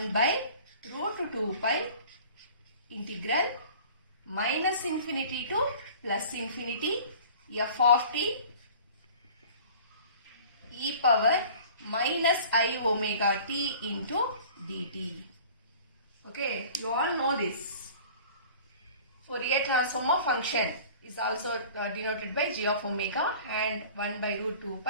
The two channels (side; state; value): both; inverted; correlation -0.45